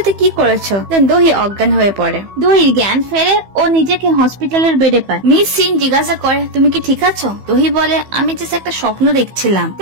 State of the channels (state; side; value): late; left; 15 ms